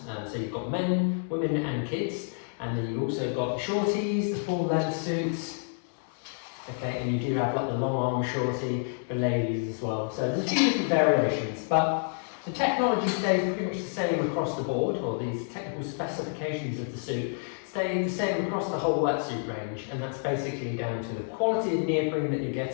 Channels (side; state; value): right; silent; 59 dB below the other